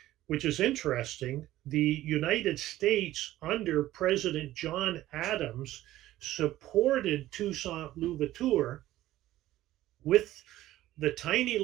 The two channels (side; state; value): left; quieter; 14.9 dB